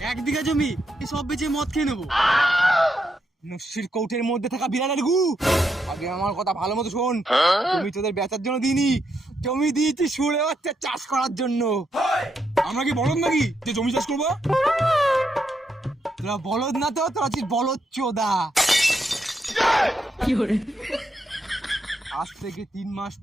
1 বিঘা জমি সব বেচে মদ খেয়ে নেবো। নস্যির কৌটের মধ্যে থাকা বিড়ালের গু, আগে আমার কথা ভালো মতো শোন। জমি তোদের বেচার জন্য দিইনি, জমি দিয়েছি শুনে বাচ্চা চাষ করার জন্য। আমরা কি বলদ নাকি যে জমি চাষ করবো? তোরা বলদ না তো, তোরা আছিস বলদ চোদা। আজ থেকে 3 মাস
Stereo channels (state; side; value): normal; both; correlation 0.81